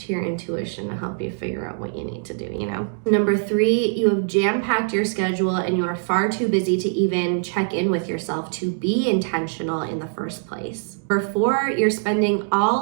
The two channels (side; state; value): left; silent; digital silence